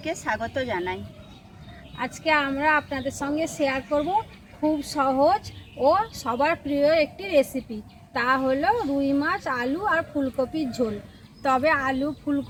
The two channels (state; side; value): identical; both; correlation 1.00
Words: স্বাগত জানাই। আজকে আমরা আপনাদের সঙ্গে শেয়ার করব খুব সহজ ও সবার প্রিয় একটি রেসিপি, তা হলো রুই মাছ, আলু আর ফুলকপির ঝোল। তবে আলু,